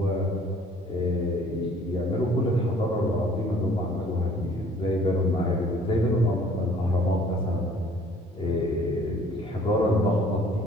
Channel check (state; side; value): normal; both; correlation 0.55